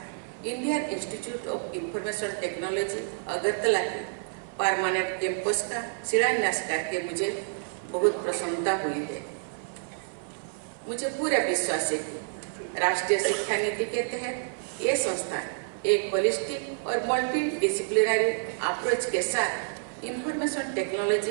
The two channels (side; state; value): left; silent; 59 dB below the other